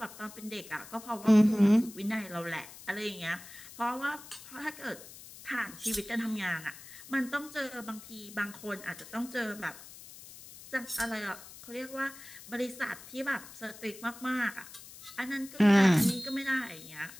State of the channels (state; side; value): noise; left; hiss, 17 dB below the sound